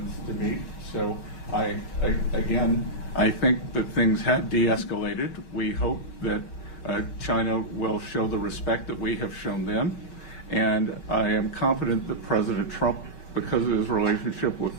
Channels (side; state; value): right; late; 5.3 ms